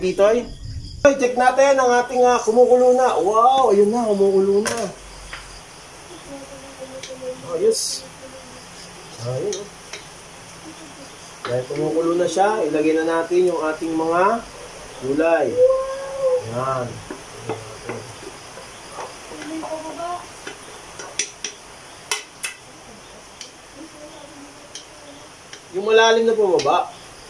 Check natin ang ating kumukulo na. Wow, ayun na, kumukulo na. Ayos. Ayun. Dahil kumukulo na siya, ilagay na natin yung ating mga gulay. Yan. Yung malalim na bumaba.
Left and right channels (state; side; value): identical; both; correlation 1.00